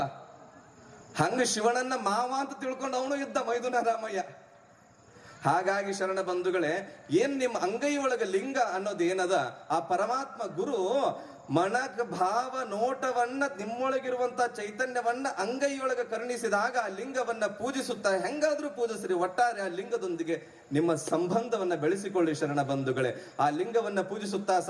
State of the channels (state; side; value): identical; both; correlation 1.00